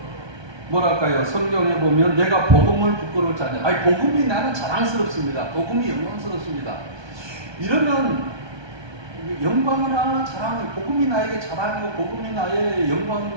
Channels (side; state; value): left; late; 1.2 ms